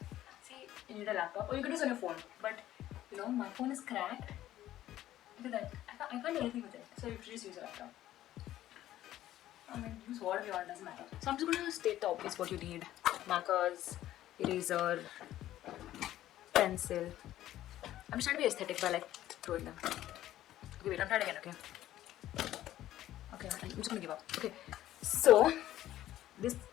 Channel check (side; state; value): right; quieter; 13.5 dB